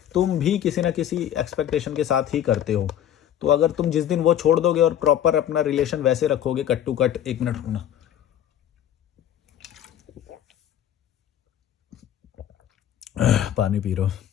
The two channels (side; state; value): right; quieter; 10.6 dB